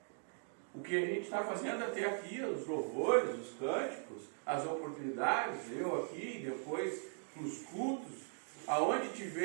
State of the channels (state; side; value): silent; left; 51 dB below the other